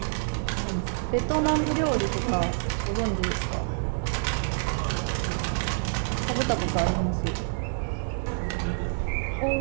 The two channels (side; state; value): left; silent; digital silence